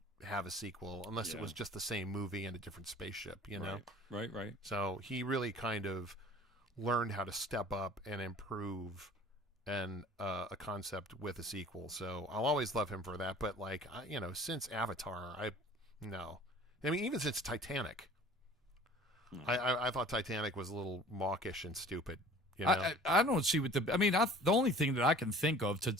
have a sequel unless it was just the same movie and a different spaceship, Right. So he really kind of learned how to step up and improve a concept with a sequel. So I'll always love him for that. But since Avatar, even since Titanic, I thought Titanic was a little mawkish and stupid. I don't see what the only thing that I can think of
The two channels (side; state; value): both; normal; correlation 0.47